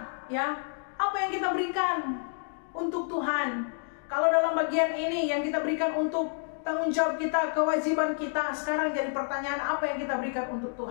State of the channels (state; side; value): silent; right; 58 dB below the other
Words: ya, apa yang kita berikan untuk Tuhan. Kalau dalam bagian ini yang kita berikan untuk tanggung jawab kita, kewajiban kita, sekarang jadi pertanyaan, apa yang kita berikan untuk